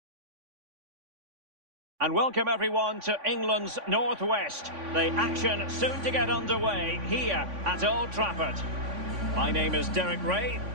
And welcome everyone to England's Northwest. The action soon to get underway here at Old Trafford. My name is Derek Ray,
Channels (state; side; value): late; left; 3.5 ms